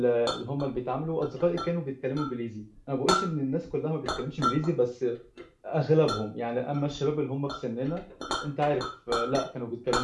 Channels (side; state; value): both; identical; correlation 1.00